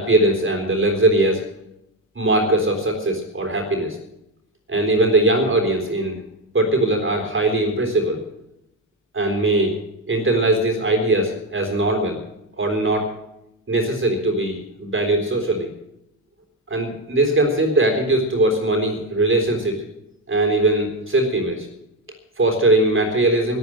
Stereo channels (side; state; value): both; normal; correlation 0.10